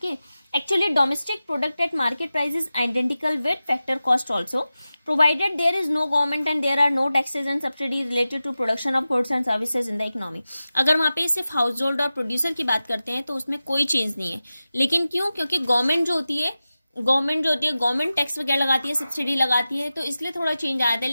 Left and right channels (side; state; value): both; inverted; correlation -0.94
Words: actually domestic product at market price is identical with factor cost also, provided there is no government and there are no taxes and subsidies related to production of goods and services in the economy. अगर वहाँ पे सिर्फ house hold और producer की बात करते हैं तो उसमें कोई चेंज नहीं है. लेकिन क्यों? क्योंकि गवर्नमेंट जो होती है गवर्नमेंट टैक्स वगैरह लगाती है, सब्सिडी लगाती है, तो इसलिए थोड़ा चेंज आया था.